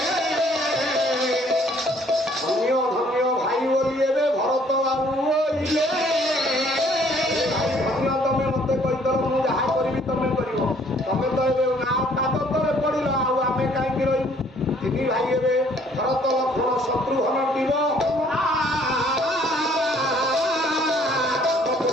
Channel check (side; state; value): both; normal; correlation 0.61